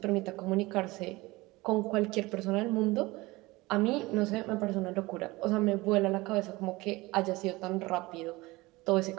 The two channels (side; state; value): left; quieter; 21.3 dB